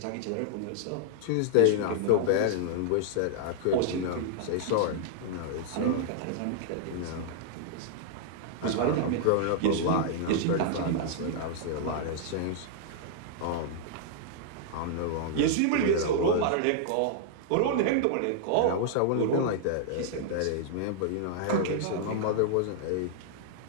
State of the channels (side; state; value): both; different; correlation -0.01